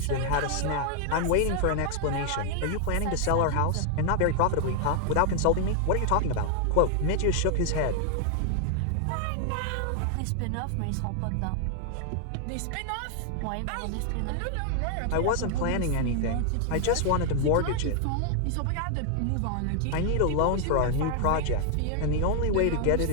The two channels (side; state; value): both; different; correlation 0.00